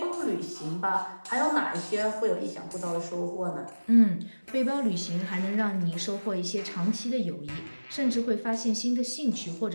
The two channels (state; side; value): inverted; both; correlation -1.00